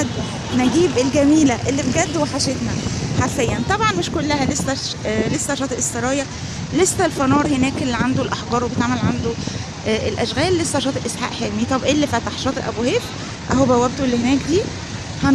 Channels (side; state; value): both; identical; correlation 1.00